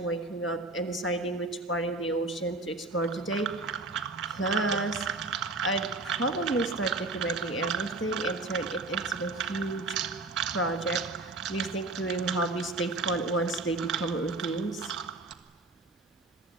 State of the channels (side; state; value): left; quieter; 3.1 dB